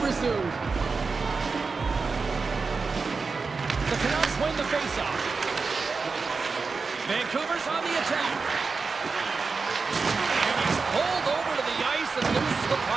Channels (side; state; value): left; quieter; 4.5 dB